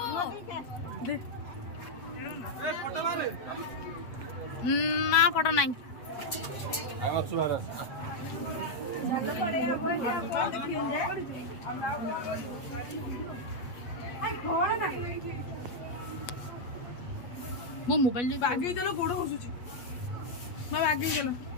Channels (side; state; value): right; late; 8.3 ms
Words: ना फोटो नहीं मो मोबाइल आगे चलो गोड़ घुसुची मैं आगे चलो